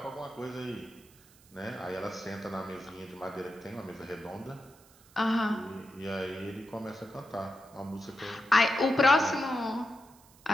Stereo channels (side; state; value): right; noise; hiss, 26 dB below the sound